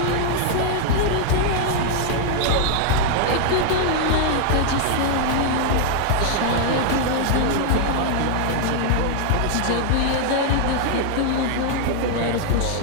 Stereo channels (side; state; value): both; different; correlation 0.00